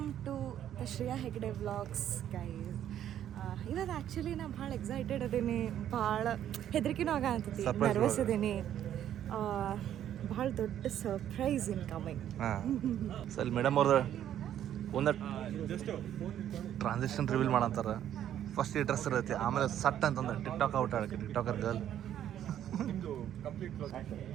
to the Shreya Hegde vlogs guys. ಇವಾಗ ಆ್ಯಕ್ಚುಲಿ ನಾ ಭಾಳ ಎಕ್ಸೈಟೆಡ್ ಅದೀನಿ, ಭಾಳ ಹೆದರಿಕೆನೂ ಆಗಂತೈತಿ, ನರ್ವಸ್ ಅದೀನಿ. ಭಾಳ ದೊಡ್ಡ surprise in coming. Sir madam ಅವ್ರದ್ದು ಒಂದು ಟ್ರಾನ್ಸಾಕ್ಷನ್ ರಿವೀಲ್ ಮಾಡಂತಾರೆ. ಫಸ್ಟ್ ಈ ಡ್ರೆಸ್ ಇರುತ್ತೆ, ಆಮೇಲೆ ಸಟ್ ಅಂತಂದ್ರೆ ಟಿಕ್ಟಾಕ್ ಔಟ್ ಆಡಕ್ಕೆ ಟಿಕ್ಟಾಕರ್ ಗರ್ಲ್.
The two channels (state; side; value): quieter; left; 10.8 dB